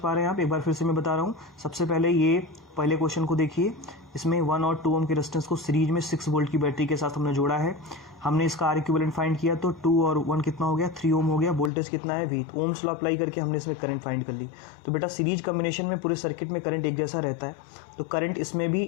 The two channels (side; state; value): right; drops out; at 11.7 s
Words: रहे हैं आप? एक बार फिर से मैं बता रहा हूँ। सबसे पहले ये पहले क्वेश्चन को देखिए, इसमें 1 और 2 ओम के रेजिस्टेंस को सीरीज में 6 वोल्ट की बैटरी के साथ हमने जोड़ा है। हमने इसका आर इक्विवेलेंट फाइंड किया तो 2 और 1 कितना हो गया 3 ओम हो गया। वोल्टेज कितना है V, ओम्स लॉ अप्लाई करके हमने इसमें करंट फाइंड कर ली। तो बेटा सीरीज कॉम्बिनेशन में पूरे सर्किट में करंट एक जैसा रहता है, तो करंट इसमें